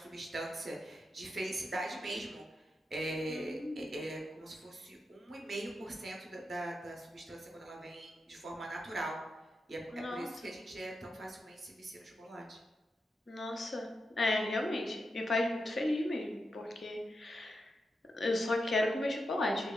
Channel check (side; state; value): both; normal; correlation 0.87